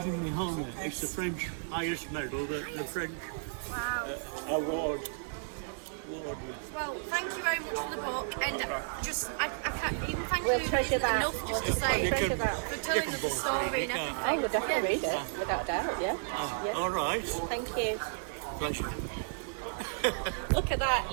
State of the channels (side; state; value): left; silent; digital silence